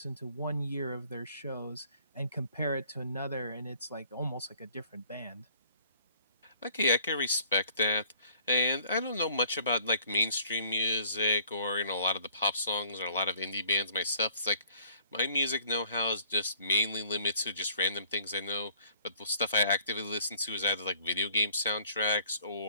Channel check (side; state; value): both; inverted; correlation -0.59